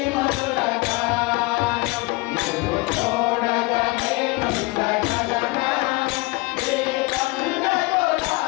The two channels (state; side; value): quieter; right; 23.8 dB